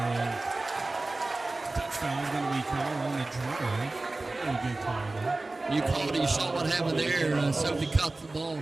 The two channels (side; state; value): left; quieter; 3.1 dB